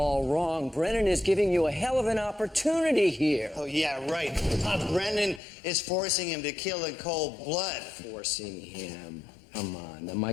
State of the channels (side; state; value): right; drops out; at 5.4 s